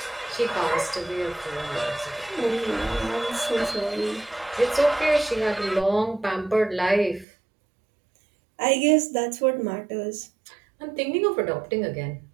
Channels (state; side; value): drops out; left; at 7.2 s